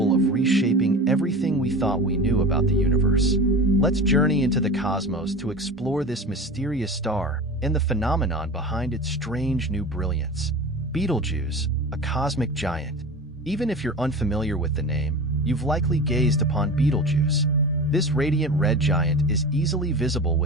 of reshaping everything we thought we knew about the universe. Let's journey into the cosmos to explore this mysterious star and the phenomenon behind its strange new brilliance. Betelgeuse, a cosmic giant. Even if you're unfamiliar with the name, you've likely gazed upon Betelgeuse. This radiant red giant is easily visible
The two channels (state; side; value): normal; both; correlation 0.32